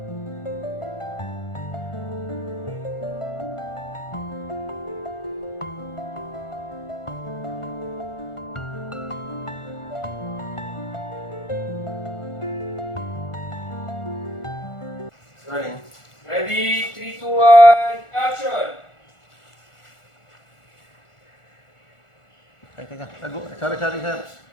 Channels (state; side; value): late; right; 1.4 ms